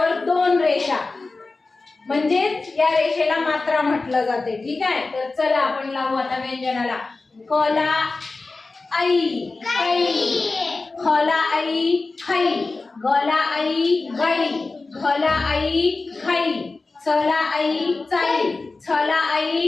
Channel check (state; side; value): quieter; right; 3.6 dB